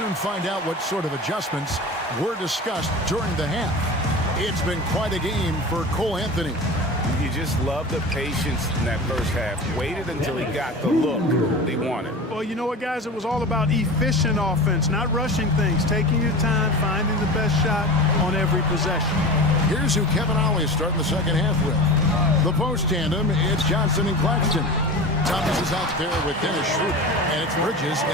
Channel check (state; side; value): normal; both; correlation 0.32